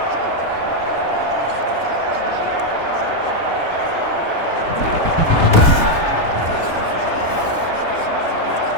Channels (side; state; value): right; late; 3.3 ms